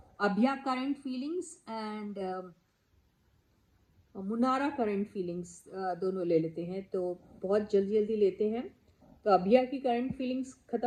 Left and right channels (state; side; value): identical; both; correlation 1.00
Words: अभिया करंट फीलिंग्स एंड मुनारा करंट फीलिंग्स दोनों ले लेते हैं, तो बहुत जल्दी जल्दी लेते हैं। तो अभिया की करंट फीलिंग्स